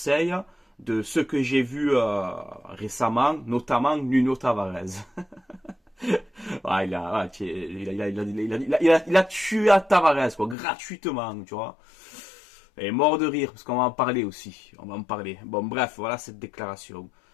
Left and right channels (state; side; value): drops out; right; at 10.6 s